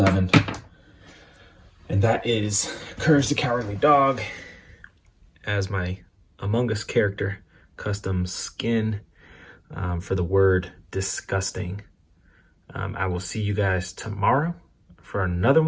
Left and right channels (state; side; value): identical; both; correlation 1.00